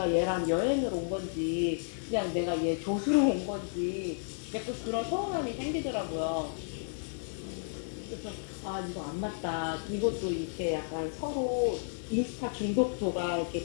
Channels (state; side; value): silent; right; 56 dB below the other